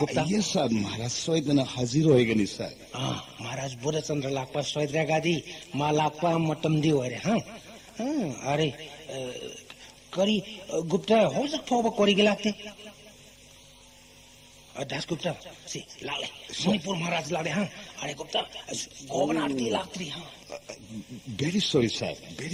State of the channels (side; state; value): both; identical; correlation 1.00